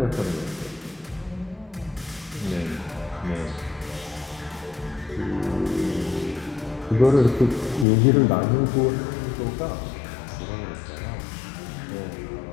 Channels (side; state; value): right; drops out; at 7.9 s